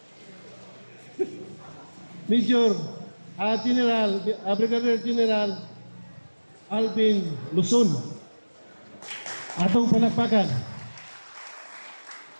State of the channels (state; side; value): inverted; both; correlation -1.00